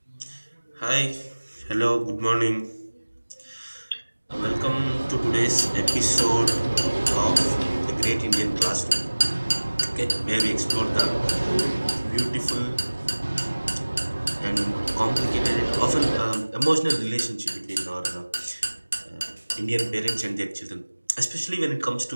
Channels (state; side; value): inverted; both; correlation -1.00